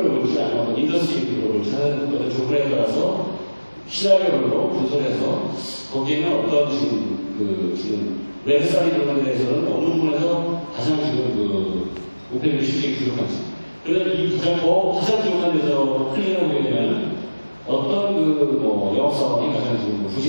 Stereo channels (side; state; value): both; inverted; correlation -1.00